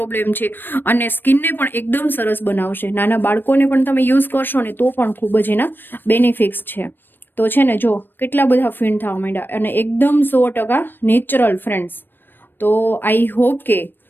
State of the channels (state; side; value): late; right; 0.095 ms